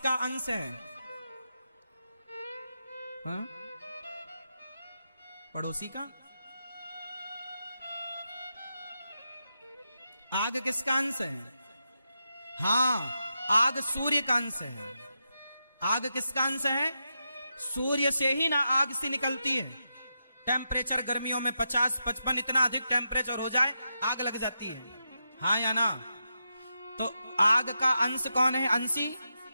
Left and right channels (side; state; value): both; inverted; correlation -0.86